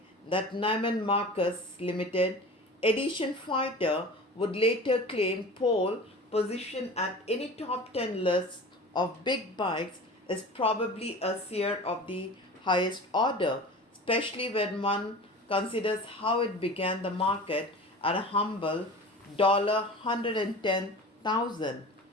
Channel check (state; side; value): normal; both; correlation 0.36